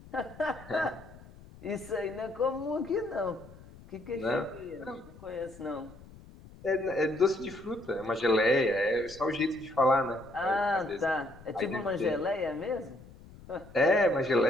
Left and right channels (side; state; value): left; noise; rumble, 20 dB below the sound